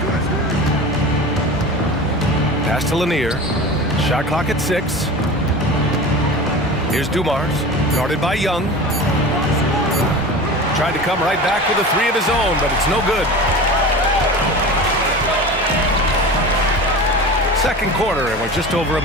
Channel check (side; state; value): both; normal; correlation 0.33